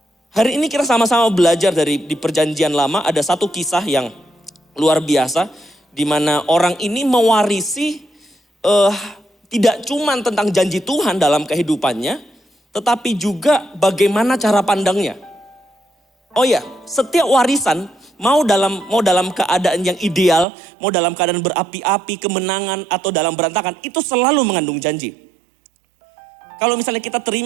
Hari ini kita sama-sama belajar di perjanjian lama, ada satu kisah yang luar biasa. Di mana orang ini mewarisi tidak cuma tentang janji Tuhan dalam kehidupannya, tetapi juga bagaimana cara pandangnya. Oh ya, setiap warisan mau dalam keadaan yang ideal, mau dalam keadaan berapi-api, kemenangan atau dalam berantakan, itu selalu mengandung janji. Kalau misalnya kita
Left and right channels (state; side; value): drops out; left; at 20.5 s